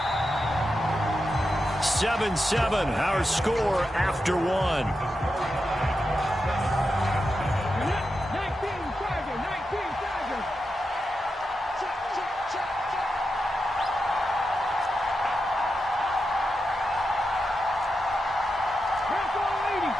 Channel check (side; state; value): both; normal; correlation 0.88